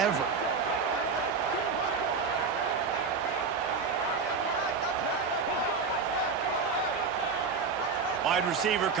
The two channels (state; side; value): quieter; left; 5.1 dB